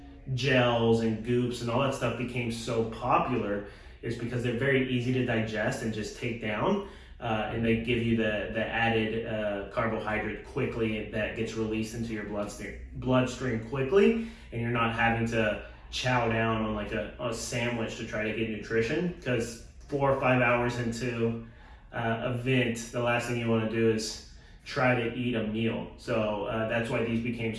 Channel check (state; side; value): identical; both; correlation 1.00